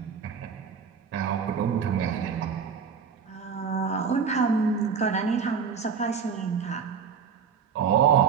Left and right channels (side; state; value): left; quieter; 6.5 dB